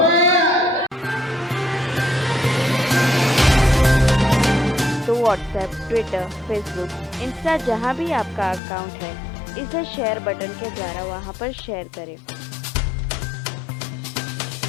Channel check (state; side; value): drops out; right; at 8.6 s